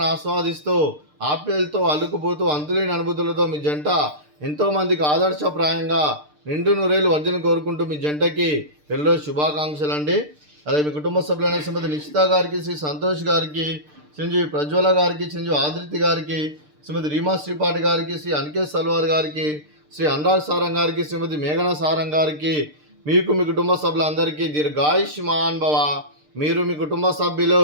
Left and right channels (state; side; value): late; left; 6.7 ms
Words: ఆస్వాదిస్తూ ఆప్యాయలతో అల్లుకుపోతూ అంతులేని అనుభూతులతో మీ జంట ఎంతోమందికి ఆదర్శప్రాయంగా నిండు నూరేళ్ళు వర్జన కోరుకుంటూ మీ జంటకి పెళ్ళి శుభాకాంక్షలు అండి. అలాగే మీ కుటుంబ సభ్యులైన శ్రీమతి నిశిత గారికి, శ్రీ సంతోష్ గారికి, చిరంజీవి ప్రజ్వల గారికి, చిరంజీవి ఆదిత్య గారికి, శ్రీమతి రీమా శ్రీపాటి గారికి, శ్రీ అనికేత్ సల్వార్ గారికి, శ్రీ అనురాగ్ సారంగ్ గారికి, శ్రీమతి మేఘన సారంగ్ గారికి, మీకు మీ కుటుంబ సభ్యులందరికీ దీర్ఘాయుష్మాన్ భవ. మీరు మీ కుటుంబ